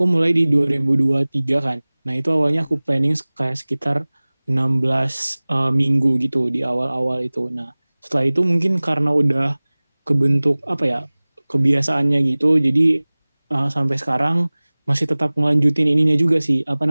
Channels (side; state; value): both; inverted; correlation -1.00